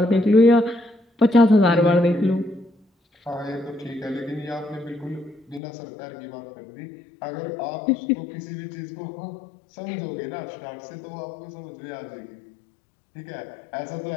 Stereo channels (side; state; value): right; drops out; at 5.6 s